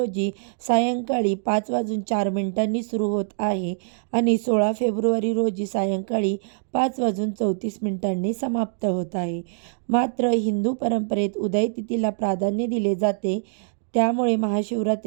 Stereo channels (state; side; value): silent; left; digital silence